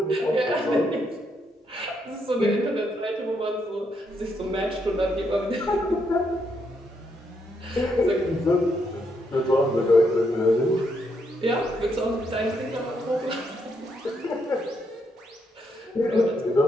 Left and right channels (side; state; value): both; normal; correlation 0.77